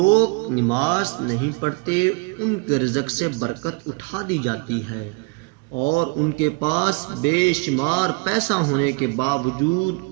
نماز نہیں پڑھتے ان کے رزق سے برکت اٹھا دی جاتی ہے اور ان کے پاس بے شمار پیسہ ہونے کے باوجود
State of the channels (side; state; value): left; quieter; 30.2 dB